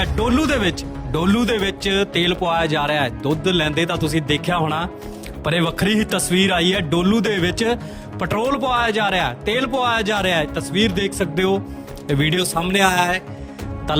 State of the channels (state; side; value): identical; both; correlation 1.00